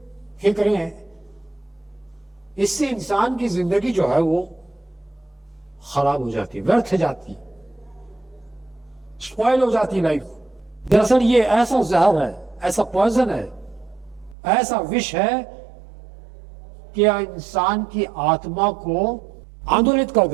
इससे इंसान की जिंदगी जो है वो खराब हो जाती है, व्यर्थ जाती है, स्पॉइल हो जाती है लाइफ। दरअसल ये ऐसा जहर है, ऐसा पॉइजन है, ऐसा विष है कि इंसान की आत्मा को आंदोलित कर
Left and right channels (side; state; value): left; drops out; at 14.4 s